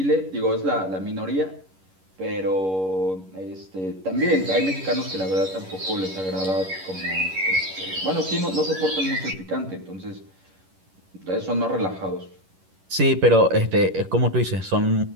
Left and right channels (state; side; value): late; left; 11 ms